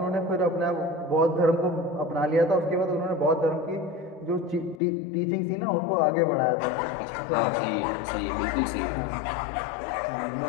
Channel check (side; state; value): right; drops out; at 4.8 s